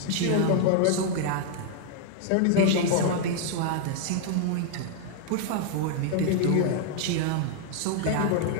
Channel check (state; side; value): different; both; correlation 0.00